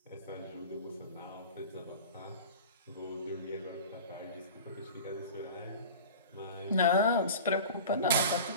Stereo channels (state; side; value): inverted; both; correlation -0.36